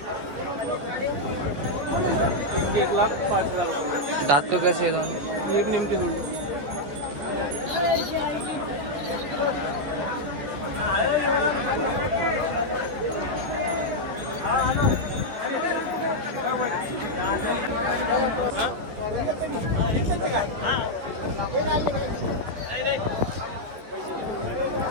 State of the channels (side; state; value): left; late; 14 ms